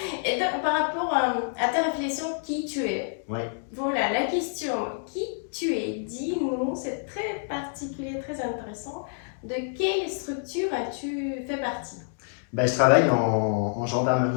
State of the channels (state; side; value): silent; right; digital silence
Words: Et donc, par rapport à ta réflexion, qui tu es? Ouais. Voilà, la question, qui tu es? Dis-nous, c'est très particulier, très intéressant. De quelle structure as-tu fait partie? Bah, je travaille en